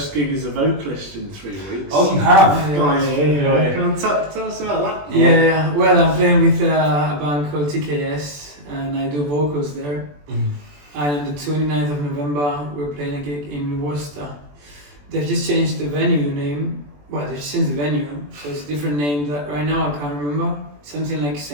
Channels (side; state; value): left; late; 21 ms